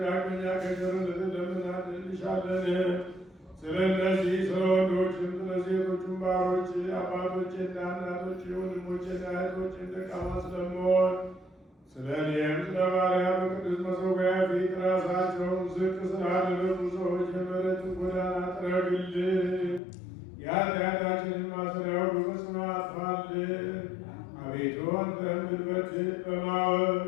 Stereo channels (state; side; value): drops out; right; at 19.8 s